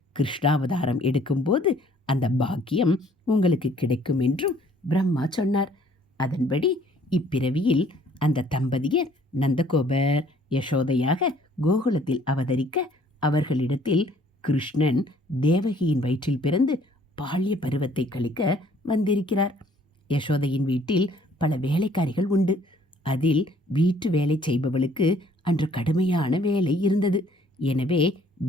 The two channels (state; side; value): normal; both; correlation 0.59